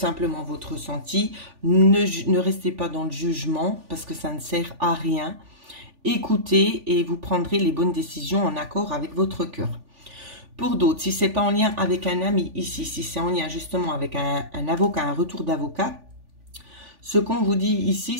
votre ressenti, ne restez pas dans le jugement parce que ça ne sert à rien. Écoutez et vous prendrez les bonnes décisions en accord avec votre cœur. Pour d'autres, si ce n'est pas en lien avec un ami ici, si c'est en lien justement avec un avocat, un retour d'avocat, ce qu'on vous dit ici,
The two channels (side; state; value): left; late; 3.4 ms